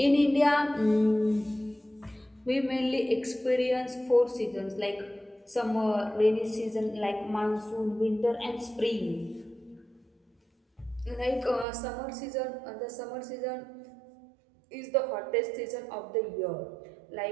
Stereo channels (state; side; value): drops out; left; at 11.7 s